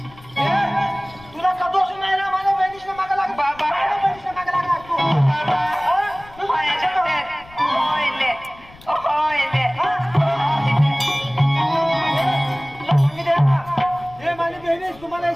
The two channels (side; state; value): left; noise; rumble, 23 dB below the sound